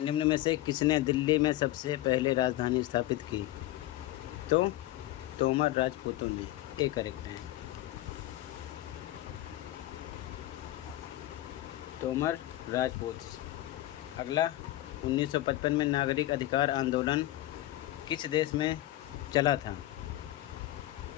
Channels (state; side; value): quieter; right; 15.5 dB